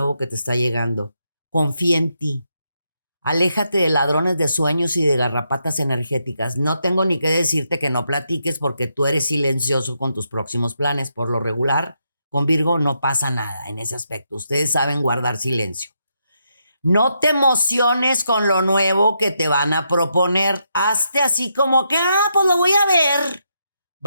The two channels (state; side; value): inverted; both; correlation -0.81